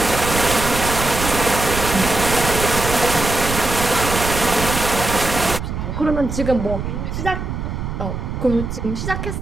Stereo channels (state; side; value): noise; right; rumble, 5 dB below the sound